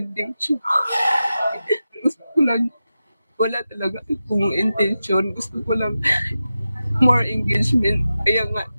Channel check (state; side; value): inverted; both; correlation -0.92